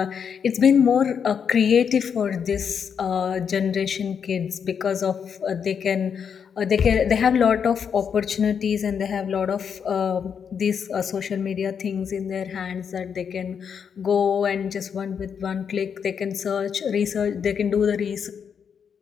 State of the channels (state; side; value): quieter; right; 7.1 dB